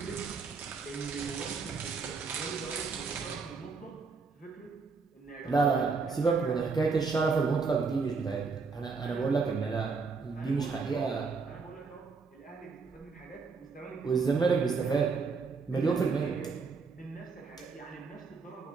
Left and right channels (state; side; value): quieter; left; 4.7 dB